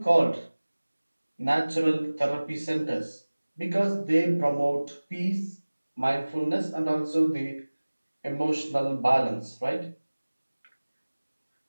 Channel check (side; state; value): both; inverted; correlation -1.00